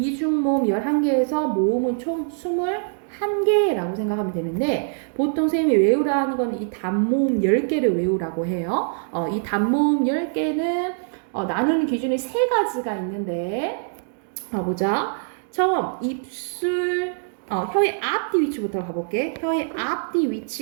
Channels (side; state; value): left; silent; digital silence